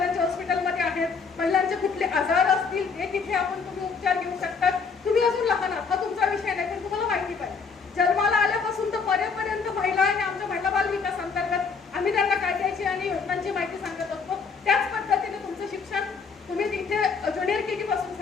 हॉस्पिटलमध्ये आहेत. महिलांचे कुठले आजार असतील ते तिथे तुम्ही उपचार घेऊ शकतात. तुम्ही अजून लहान आहात, हा तुमचा विषय नाही, पण तुम्हाला माहिती पाहिजे जन्माला आल्यापासून तर मरेपर्यंत महिला आणि आमच्या महिला बाल विकास अंतर्गत आम्ही त्यांना कायद्याची आणि योजनांची माहिती सांगत असतो. त्याच पद्धतीने तुमचं शिक्षण तुम्ही तिथे ज्युनियर केजी पासून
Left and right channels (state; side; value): quieter; right; 5.2 dB